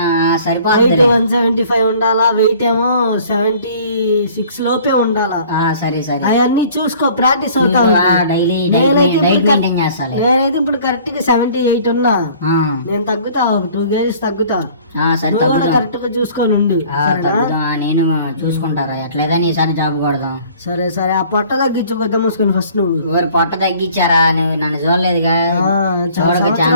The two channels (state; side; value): inverted; both; correlation -0.52